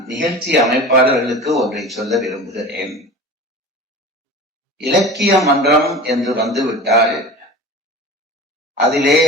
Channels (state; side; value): normal; both; correlation 0.35